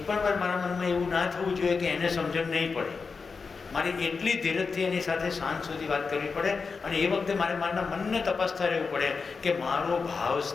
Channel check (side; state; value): right; quieter; 4.9 dB